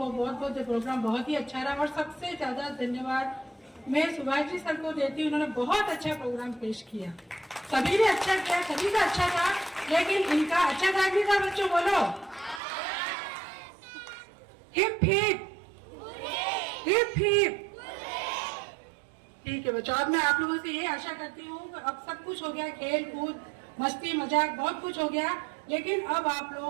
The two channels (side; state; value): left; drops out; at 12.6 s